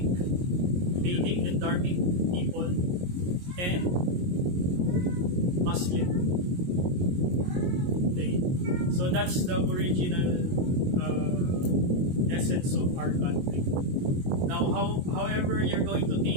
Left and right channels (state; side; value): late; left; 22 ms